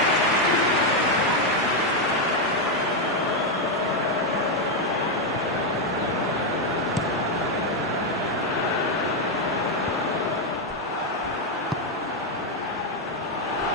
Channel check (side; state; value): both; normal; correlation 0.03